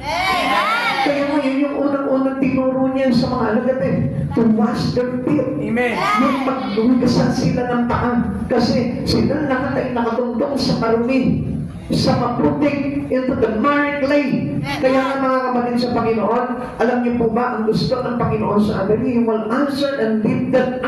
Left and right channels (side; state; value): both; identical; correlation 1.00